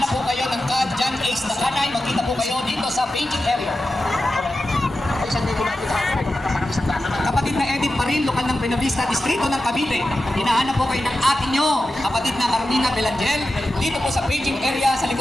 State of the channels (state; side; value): normal; both; correlation 0.92